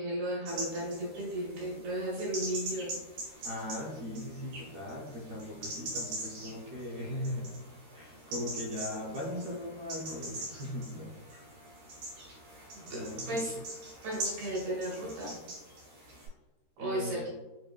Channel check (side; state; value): left; late; 13 ms